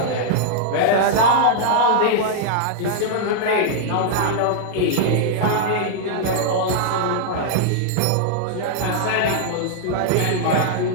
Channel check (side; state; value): both; different; correlation -0.01